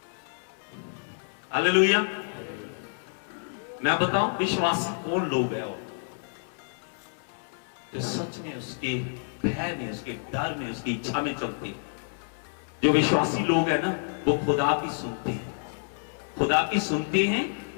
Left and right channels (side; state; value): right; silent; 59 dB below the other